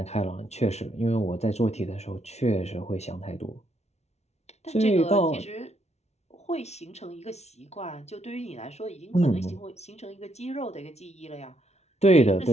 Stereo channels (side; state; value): right; late; 0.31 ms